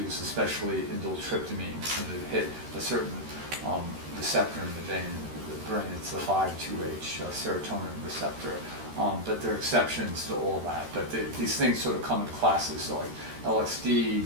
especially indole-tryptamines, and that hit a certain receptor in the vein, the brain. It's the 5-2H serotonin receptor. But there are exceptions to all that. But these things sort of come in classes, so like LSD,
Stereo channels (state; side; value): late; left; 13 ms